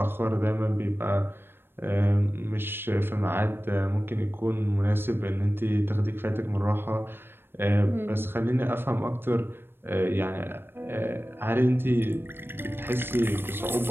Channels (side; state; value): left; late; 0.10 ms